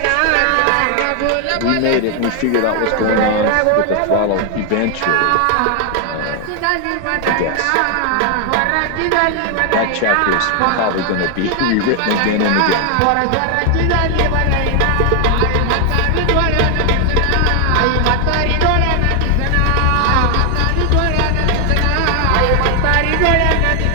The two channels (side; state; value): both; different; correlation 0.00